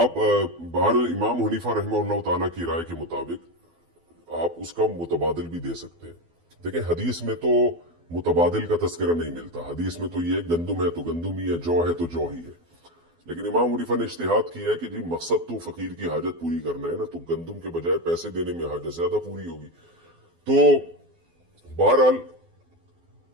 बहरहाल इमाम हनीफा रहमहुल्लाह ताला की राय के मुताबिक आप उसका मुतबादिल भी दे सकते हैं। देखिए, हदीस में तो मुतबादिल का तस्करा नहीं मिलता। हदीस में तो ये गंदुम है तो गंदुम ही है, जौ है तो जौ ही है। लेकिन इमाम हनीफा ने इज्तिहाद किया है कि जी मकसद तो फकीर की हाजत पूरी करना है ना, तो गंदुम के बजाय पैसे देने में हाजत ज्यादा पूरी होगी। तो बहरहाल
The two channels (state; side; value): late; left; 12 ms